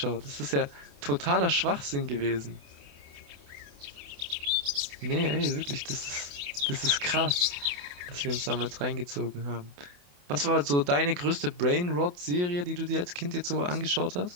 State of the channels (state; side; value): late; left; 28 ms